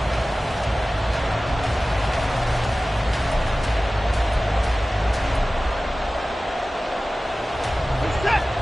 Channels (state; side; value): normal; both; correlation 0.96